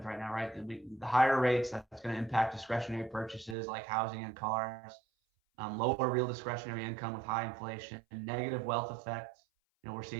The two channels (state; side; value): drops out; left; at 3.6 s